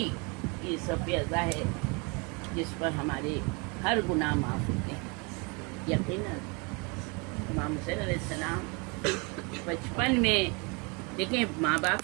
کی صف ازا ہے جس پر ہمارے ہر گناہ معاف ہوتے ہیں۔ یقیناً امام حسین علیہ السلام بچپن میں، دیکھیں ماں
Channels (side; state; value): left; quieter; 30.9 dB